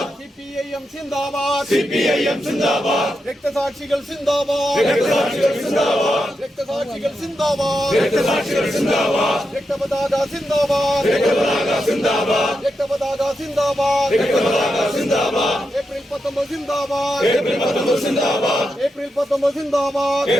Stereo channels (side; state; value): both; normal; correlation 0.86